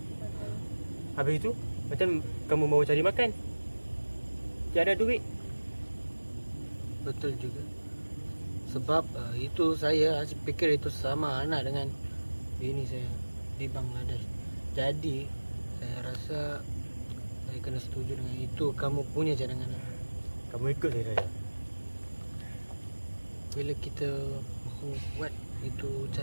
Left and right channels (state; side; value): inverted; both; correlation -1.00